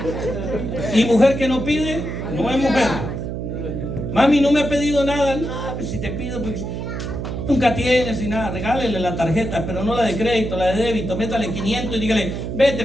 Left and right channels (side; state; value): right; noise; hum, 5 dB below the sound